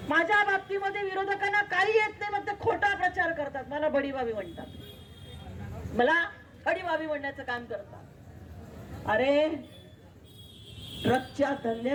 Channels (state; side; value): identical; both; correlation 1.00